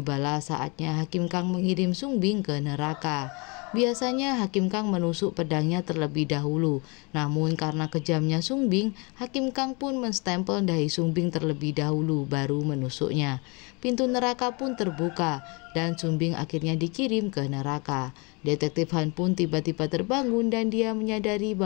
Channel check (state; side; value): quieter; right; 29.7 dB